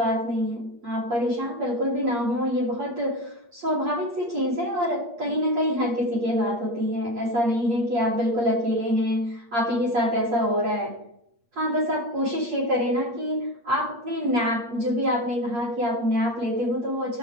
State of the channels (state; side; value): late; left; 8.5 ms